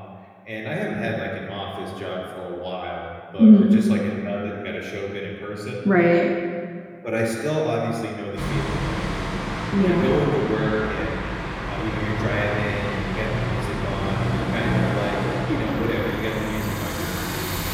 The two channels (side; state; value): both; identical; correlation 1.00